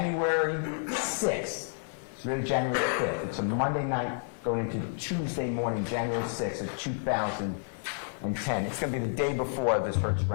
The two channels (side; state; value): right; silent; digital silence